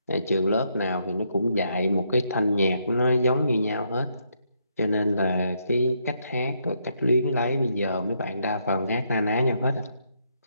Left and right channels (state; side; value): inverted; both; correlation -0.75